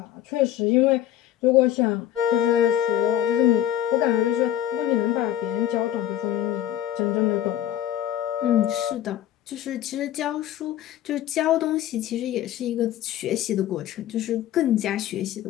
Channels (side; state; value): right; quieter; 12.0 dB